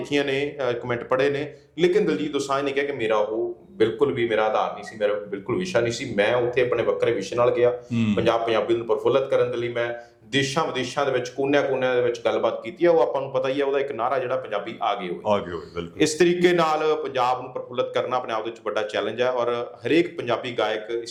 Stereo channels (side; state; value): both; identical; correlation 1.00